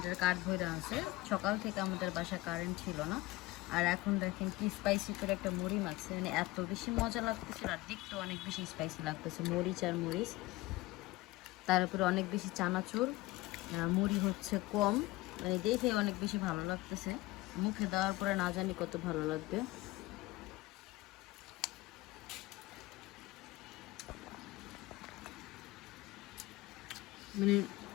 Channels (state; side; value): quieter; right; 19.8 dB